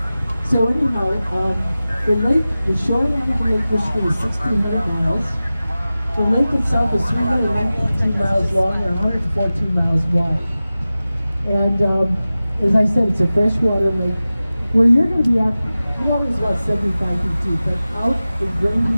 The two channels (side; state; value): both; inverted; correlation -0.96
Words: So anyhow, the shoreline of Lake Michigan is 1,600 miles. The lake itself is 319 miles long and 114 miles wide. And as I said, it's a freshwater lake. Where you're going to be at, the water is about 75 feet deep, but out in